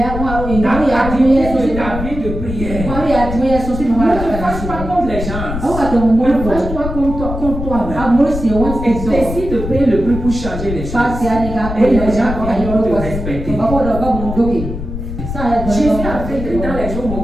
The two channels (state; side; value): noise; left; rumble, 6 dB below the sound